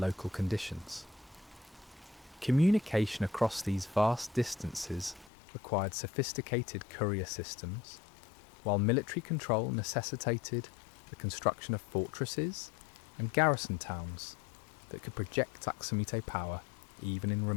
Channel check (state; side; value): drops out; right; at 5.3 s